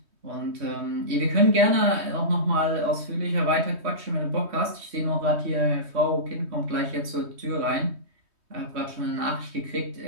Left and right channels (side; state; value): left; late; 3.2 ms